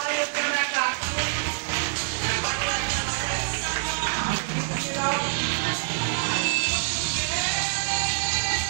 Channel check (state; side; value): silent; left; 61 dB below the other